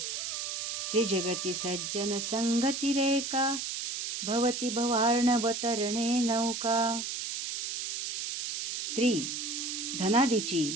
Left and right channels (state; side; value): noise; right; hiss, 4 dB below the sound